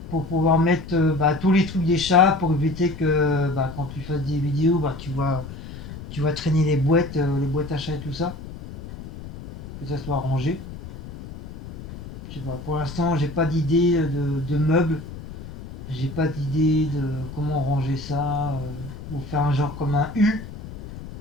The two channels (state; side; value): noise; left; rumble, 12 dB below the sound